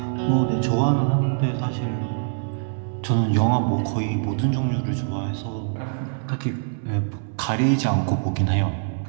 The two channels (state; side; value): silent; left; 63 dB below the other